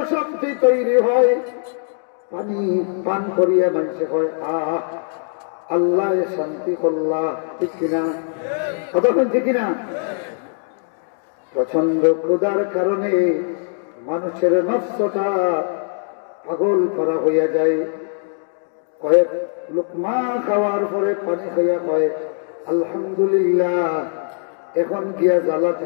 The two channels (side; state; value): right; silent; digital silence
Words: শক্তি তৈরি হয়। পানি পান করিয়া মানুষে হয় আহ আল্লাহ শান্তি করলা। ঠিক কিনা? কতক্ষণ ঠিক কিনা? প্রচন্ড ক্ষুধার কারণে মানুষের নফসটা পাগল করা হইয়া যায়। কয়েক লুকমা খাওয়ার পরে পানি খাইয়া কয় আলহামদুলিল্লাহ, এখন গিয়া জ্বালা